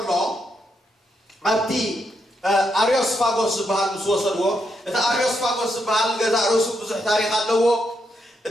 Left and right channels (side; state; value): both; normal; correlation 0.80